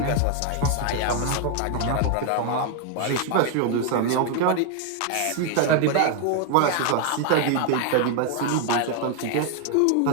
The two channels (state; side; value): different; both; correlation 0.00